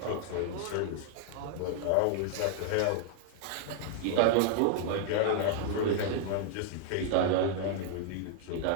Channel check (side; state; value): both; different; correlation 0.00